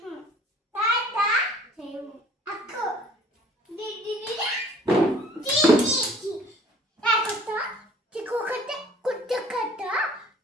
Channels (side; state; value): both; normal; correlation 0.53